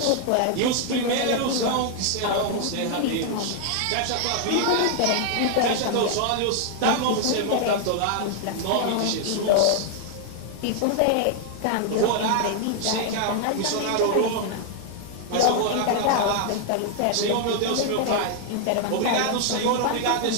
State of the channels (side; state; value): both; different; correlation 0.00